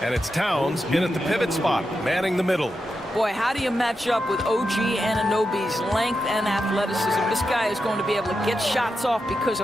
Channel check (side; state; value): both; normal; correlation 0.88